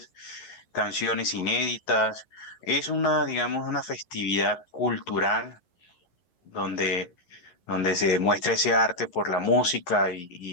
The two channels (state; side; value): late; right; 11 ms